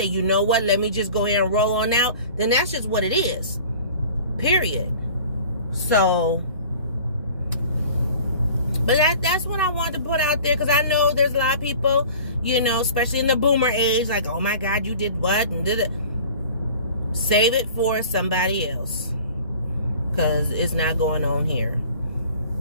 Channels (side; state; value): both; inverted; correlation -0.45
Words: you know what, let me just go ahead and roll on out, then that's just what it is. Period. So, but that's what I wanted to put out there, because I know there's a lot of people, you know, especially in the boomer age, like, oh my God, you did what and did it. Save it for somebody else, because it's not going on here.